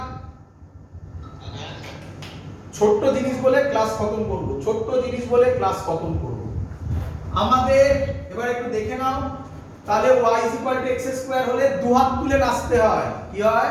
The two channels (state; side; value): identical; both; correlation 1.00